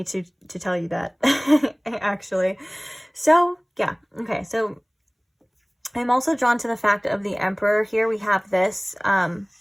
to tell you that, actually. So, yeah. Okay, so I'm also drawn to the fact of the Emperor here. We have this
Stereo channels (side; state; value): both; identical; correlation 1.00